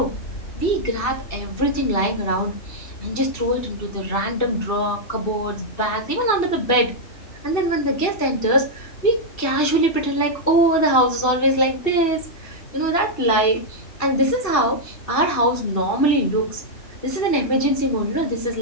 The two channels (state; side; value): late; right; 2.7 ms